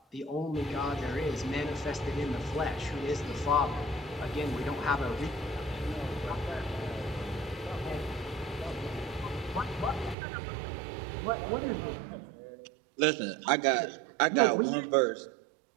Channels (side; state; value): left; drops out; at 10.2 s